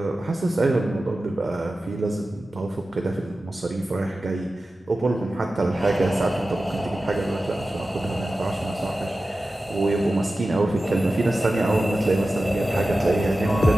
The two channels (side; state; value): both; normal; correlation 0.94